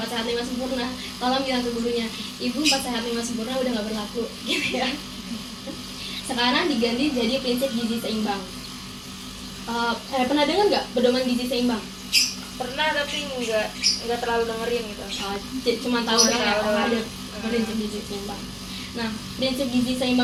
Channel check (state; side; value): identical; both; correlation 1.00